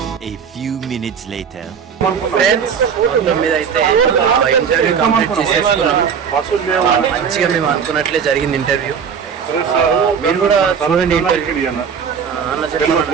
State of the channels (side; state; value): left; quieter; 6.9 dB